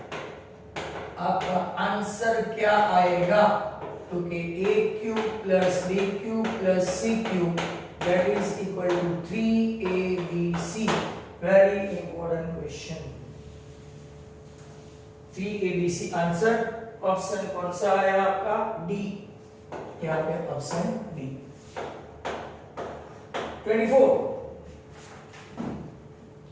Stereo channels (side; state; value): both; identical; correlation 1.00